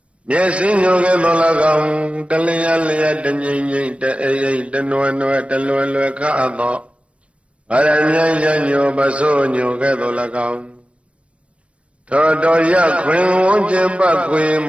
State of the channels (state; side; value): late; left; 0.061 ms